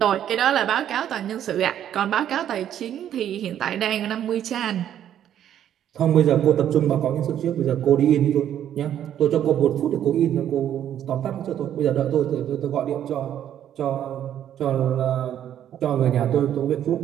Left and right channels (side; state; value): left; quieter; 10.5 dB